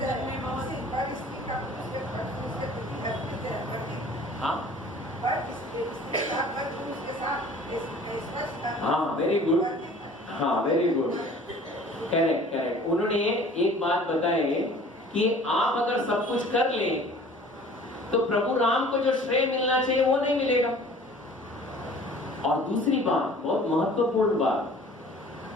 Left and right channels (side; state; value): both; normal; correlation 0.48